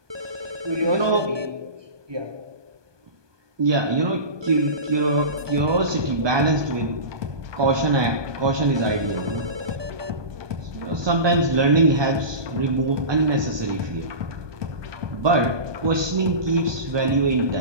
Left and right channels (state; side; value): late; left; 1.2 ms